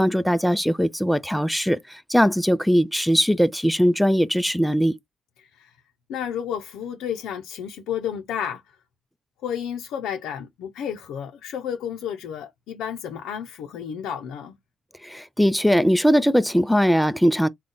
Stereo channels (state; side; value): normal; both; correlation 0.95